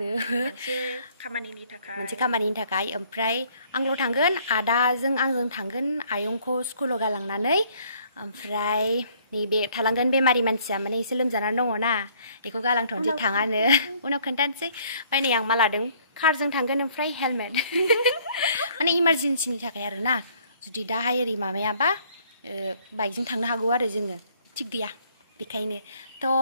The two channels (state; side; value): inverted; both; correlation -0.62